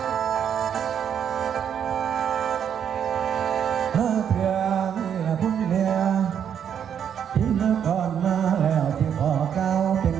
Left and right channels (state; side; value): quieter; left; 8.5 dB